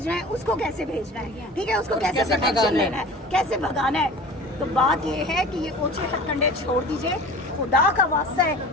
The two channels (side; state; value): both; normal; correlation 0.39